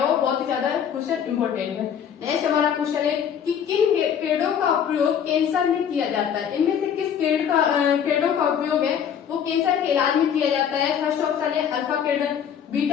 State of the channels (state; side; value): quieter; right; 8.3 dB